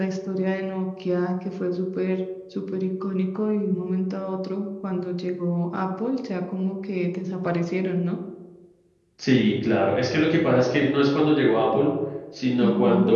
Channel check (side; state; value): both; identical; correlation 1.00